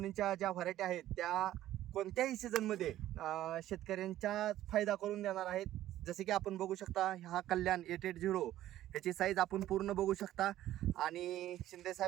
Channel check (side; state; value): left; quieter; 13.6 dB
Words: ज्या व्हरायटी आहेत त्या कोणत्याही सीझनमध्ये शेतकऱ्यांचा फायदा करून देणार आहेत. जसे की आपण बघू शकता हा कल्याण 880 ह्याची साईज आपण पूर्ण बघू शकता. आणि शिंदे